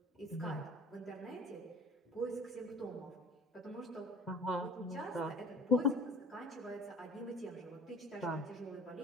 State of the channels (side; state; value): both; normal; correlation 0.43